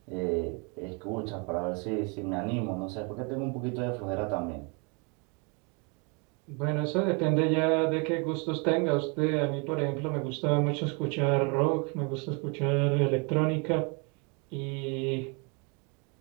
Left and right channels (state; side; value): quieter; left; 33.1 dB